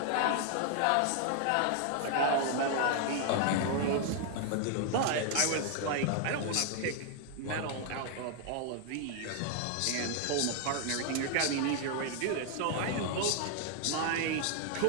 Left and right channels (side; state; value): both; different; correlation 0.00